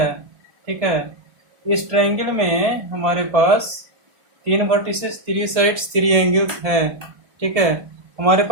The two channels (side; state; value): left; late; 1.7 ms